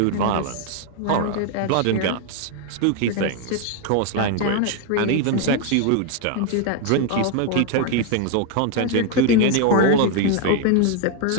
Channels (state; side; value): different; both; correlation 0.01